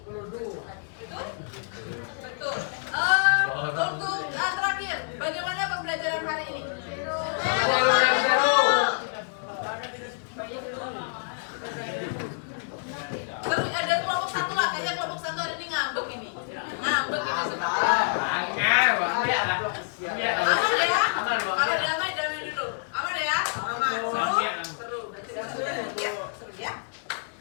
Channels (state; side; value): silent; right; digital silence